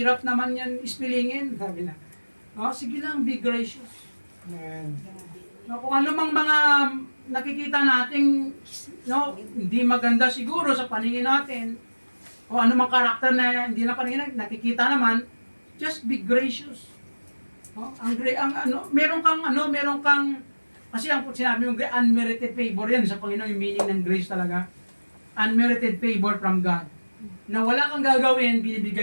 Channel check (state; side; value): inverted; both; correlation -1.00